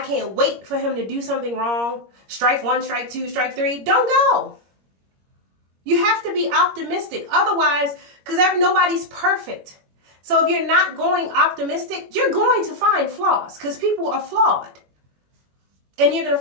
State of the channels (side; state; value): left; late; 21 ms